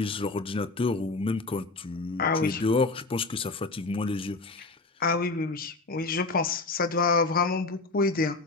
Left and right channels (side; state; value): right; quieter; 3.5 dB